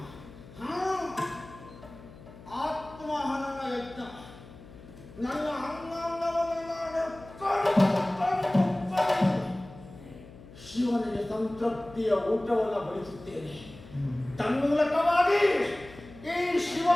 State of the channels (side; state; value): left; noise; hum, 19 dB below the sound